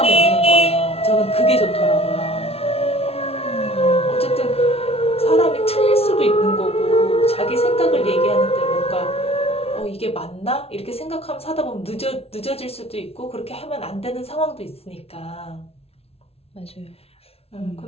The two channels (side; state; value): right; late; 0.29 ms